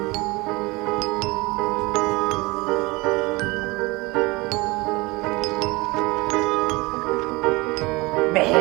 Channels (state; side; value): quieter; left; 23.7 dB